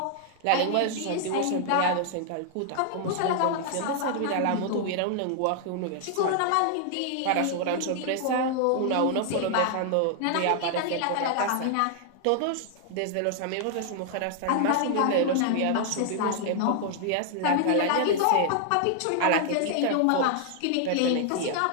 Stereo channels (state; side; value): different; both; correlation 0.00